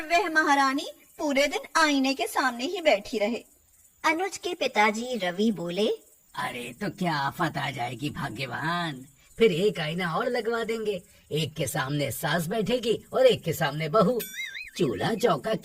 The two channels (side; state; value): both; identical; correlation 1.00